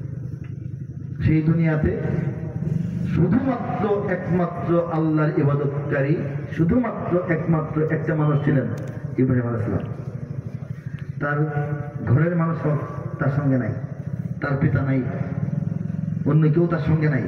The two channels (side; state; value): both; identical; correlation 1.00